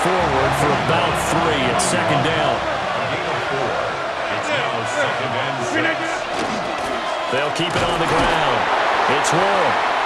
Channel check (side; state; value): both; identical; correlation 1.00